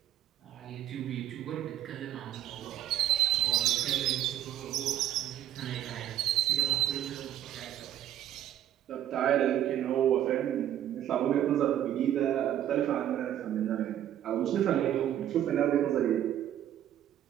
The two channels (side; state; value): left; quieter; 11.6 dB